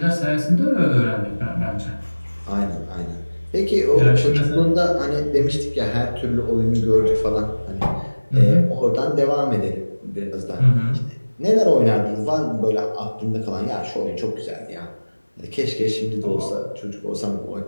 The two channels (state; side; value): inverted; both; correlation -1.00